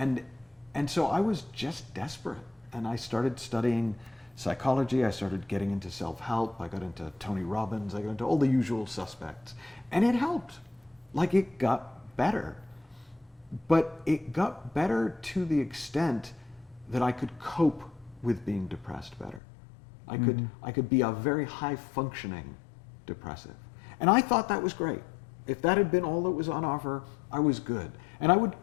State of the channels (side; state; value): right; drops out; at 19.4 s